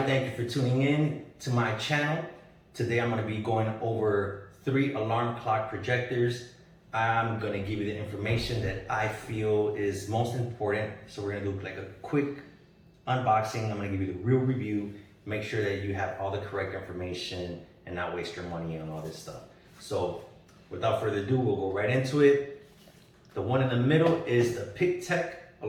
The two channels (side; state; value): both; identical; correlation 1.00